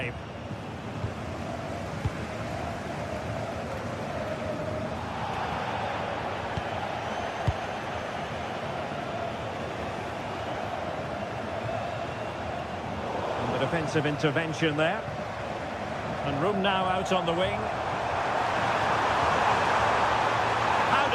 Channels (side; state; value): both; identical; correlation 1.00